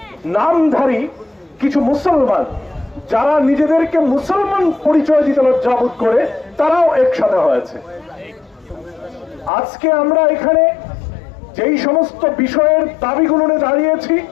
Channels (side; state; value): right; drops out; at 9.5 s